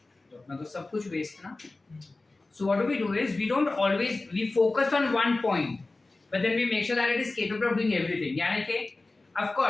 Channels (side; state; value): right; quieter; 3.2 dB